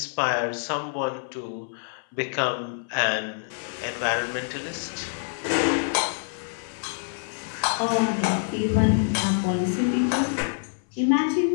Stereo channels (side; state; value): right; silent; 61 dB below the other